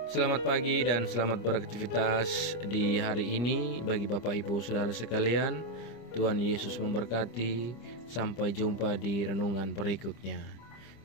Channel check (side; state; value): right; late; 25 ms